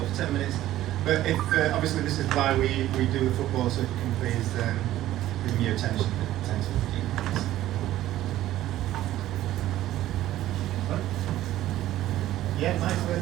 for 10 minutes. But if obviously this is why we do the football, so if you can please give me your attention for 10 to 15 minutes. Yeah, nice.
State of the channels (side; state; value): left; quieter; 14.1 dB